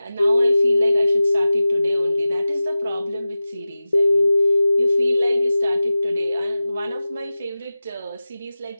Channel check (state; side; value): inverted; both; correlation -0.95